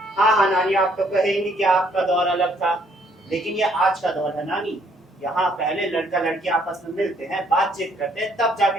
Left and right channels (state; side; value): normal; both; correlation 0.66